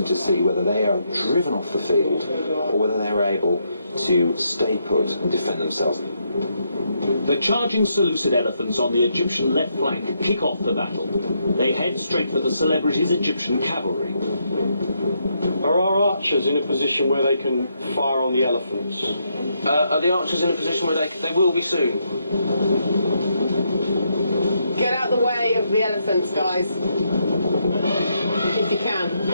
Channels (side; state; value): both; inverted; correlation -0.78